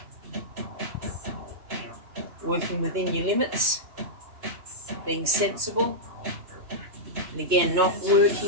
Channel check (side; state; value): left; late; 2.9 ms